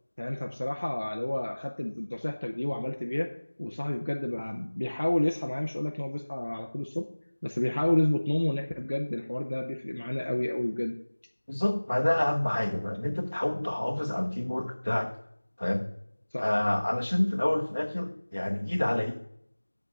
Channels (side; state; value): both; inverted; correlation -1.00